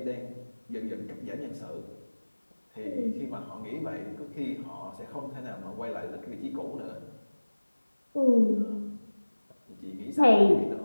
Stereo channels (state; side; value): inverted; both; correlation -1.00